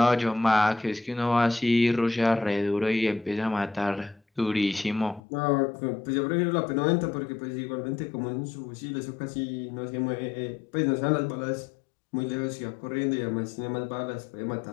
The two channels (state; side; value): drops out; right; at 5.2 s